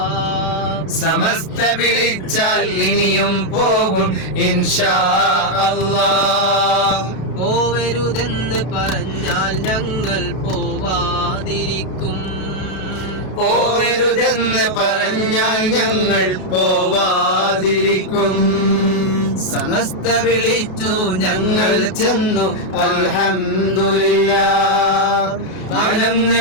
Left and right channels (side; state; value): right; late; 32 ms